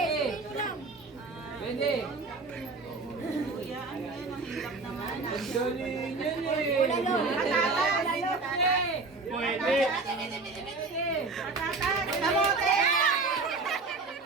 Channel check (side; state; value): left; quieter; 3.8 dB